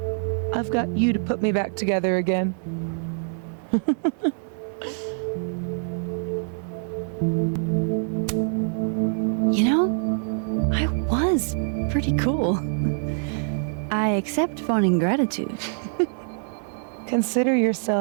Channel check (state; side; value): silent; left; 62 dB below the other